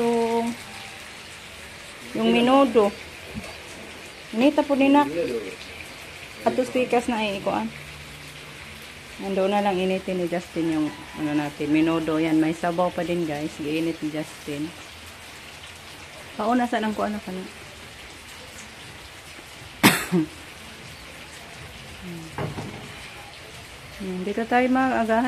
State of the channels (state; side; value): identical; both; correlation 1.00